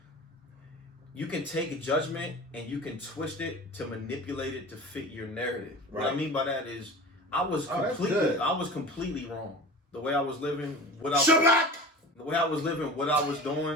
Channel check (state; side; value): normal; both; correlation 0.36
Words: you can take a judgment and you can twist it to manipulate it to fit your narrative. Right. What I mean by that is I was completely wrong. The way I was living, what I was